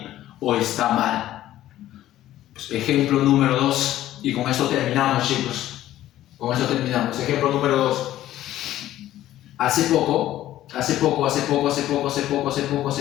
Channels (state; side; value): quieter; right; 13.6 dB